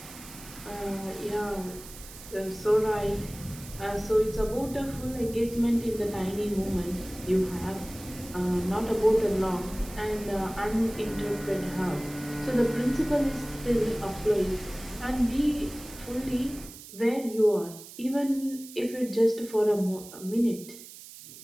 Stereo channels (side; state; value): right; noise; hiss, 16 dB below the sound